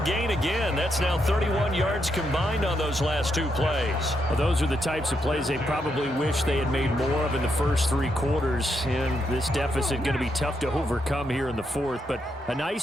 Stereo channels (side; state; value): both; normal; correlation 0.80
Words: gain again. That's now 31 yards combined on those last two plays. Well, those are the types of plays they probably wish they had made more of in the first 3 quarters. And this deficit going to be tough to overcome here in the 4th. But a